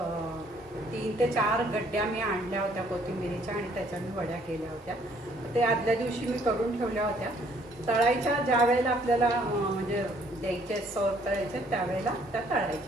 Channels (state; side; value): normal; both; correlation 0.63